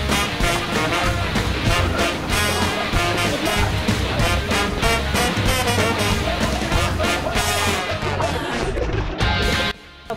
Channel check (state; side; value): identical; both; correlation 1.00